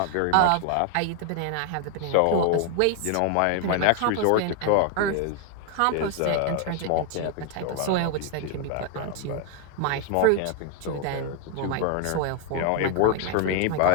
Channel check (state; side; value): different; both; correlation 0.00